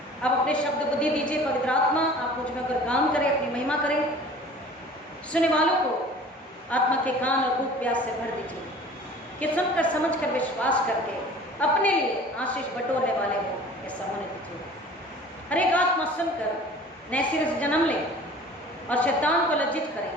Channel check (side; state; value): both; normal; correlation 0.45